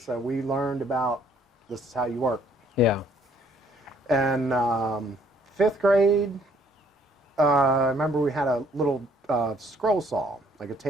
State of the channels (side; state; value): both; normal; correlation 0.63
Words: So we learned about this is how you work. Yeah. And fifth grade, I remember we had a little scroll saw, like a